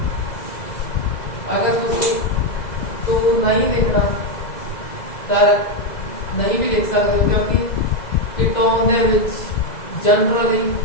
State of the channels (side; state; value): right; late; 2.0 ms